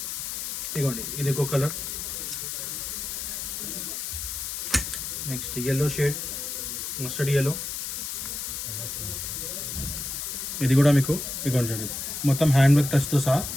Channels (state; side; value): noise; left; hiss, 4 dB below the sound